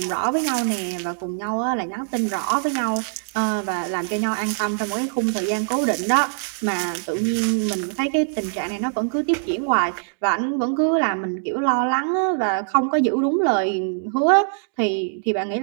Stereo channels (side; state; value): left; silent; digital silence